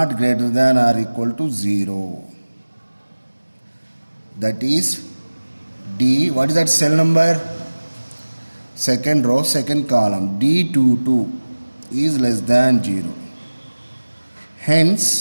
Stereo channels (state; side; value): inverted; both; correlation -1.00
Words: greater than or equal to 0. That is D. What is that cell number? Second row, second column. D22 is less than 0.